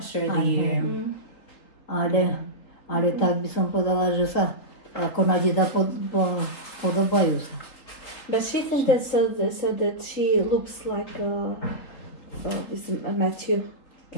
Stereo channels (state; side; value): late; right; 3.8 ms